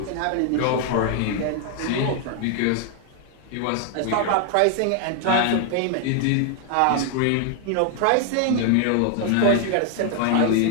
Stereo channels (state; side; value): different; both; correlation 0.00